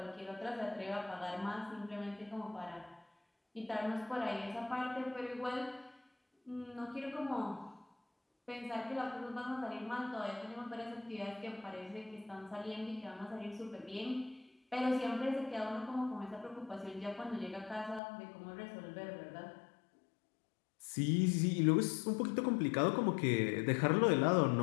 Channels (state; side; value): drops out; right; at 18.0 s